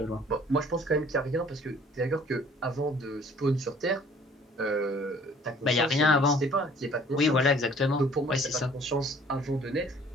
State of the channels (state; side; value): normal; both; correlation 0.55